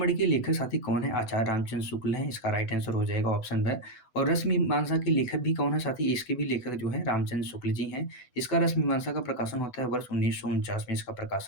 के लेखक साथी कौन है, आचार्य रामचंद्र शुक्ल हैं, इसका राइट आंसर हो जाएगा ऑप्शन ब। और रस मीमांसा के लेखक भी कौन है साथी, इसके भी लेखक जो है रामचंद्र शुक्ल जी हैं। इसका रस मीमांसा का प्रकाशन होता है वर्ष 1949 में, इसका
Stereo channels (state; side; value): late; right; 8.0 ms